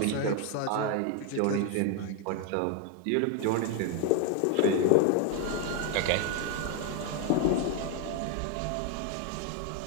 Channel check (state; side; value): different; both; correlation 0.01